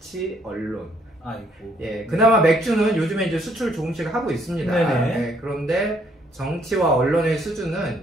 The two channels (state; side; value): normal; both; correlation 0.68